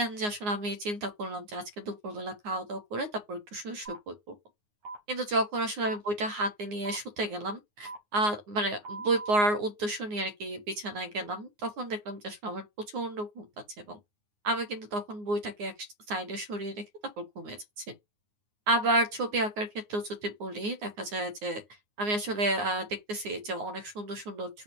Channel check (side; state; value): left; late; 9.6 ms